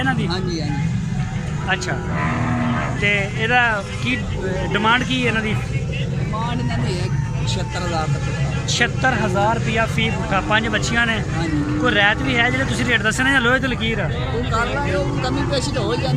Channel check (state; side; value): identical; both; correlation 1.00